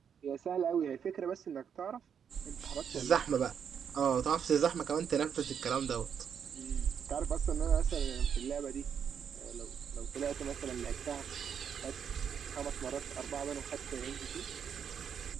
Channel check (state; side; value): quieter; left; 7.7 dB